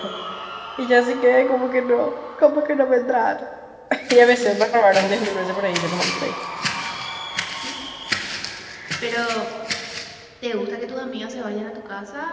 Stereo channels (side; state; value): both; identical; correlation 1.00